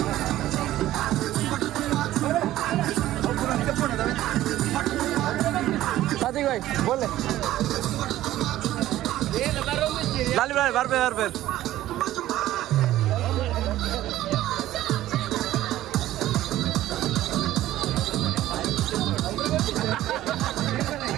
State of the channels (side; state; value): left; quieter; 14.3 dB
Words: प्रतीक भाई बोल लाली भाई बार पे